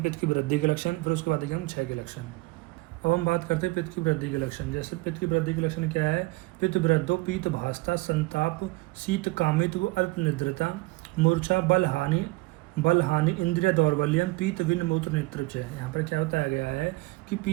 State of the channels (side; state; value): left; quieter; 22.5 dB